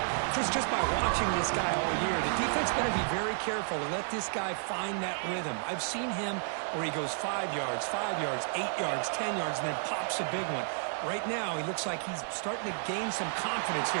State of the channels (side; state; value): left; silent; digital silence